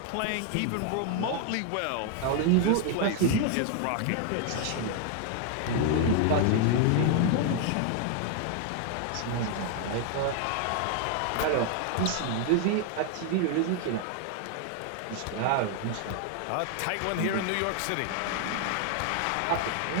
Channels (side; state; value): both; different; correlation 0.00